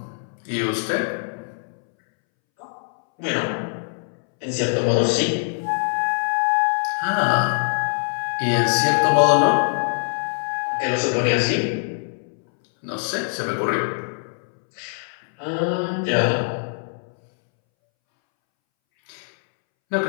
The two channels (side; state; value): right; silent; 64 dB below the other